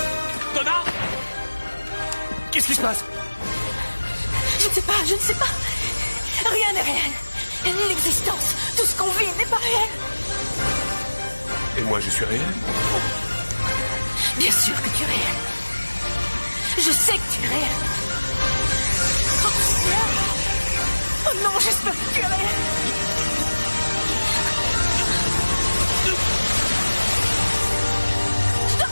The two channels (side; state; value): both; inverted; correlation -1.00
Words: 2, Donna! Qu'est-ce qui se passe? Je ne sais pas. Rien n'est réel. L'existence, tout ce qu'on vit n'est pas réel. Et moi, je suis réel? Bien sûr que tu es réel. Je sais que tu es réel. Oh non, j'espère que tu es réel. Je